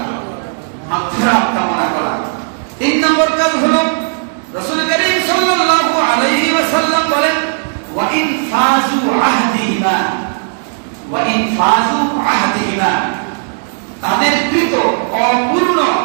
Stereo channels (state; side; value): silent; left; digital silence